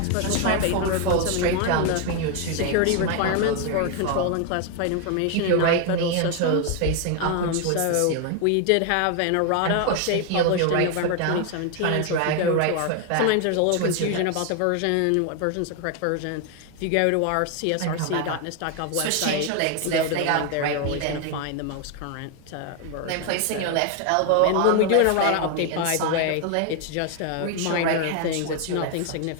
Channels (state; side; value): different; both; correlation 0.01